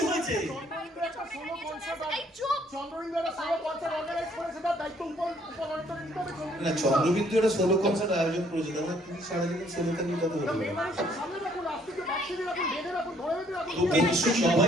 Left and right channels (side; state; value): both; normal; correlation 0.65